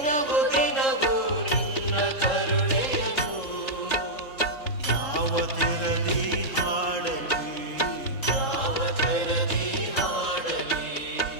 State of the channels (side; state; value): right; late; 3.7 ms